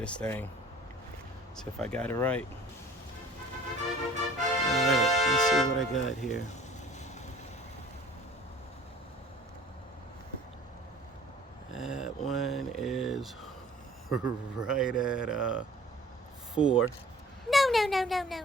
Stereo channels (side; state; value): both; normal; correlation 0.49